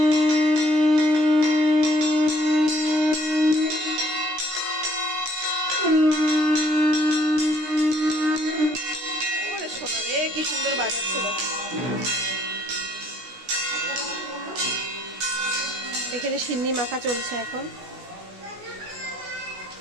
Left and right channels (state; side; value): late; left; 16 ms